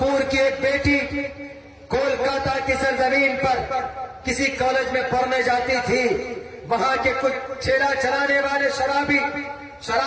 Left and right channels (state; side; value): identical; both; correlation 1.00